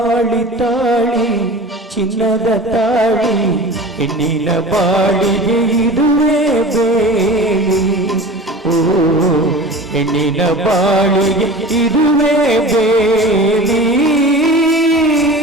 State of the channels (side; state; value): both; normal; correlation 0.36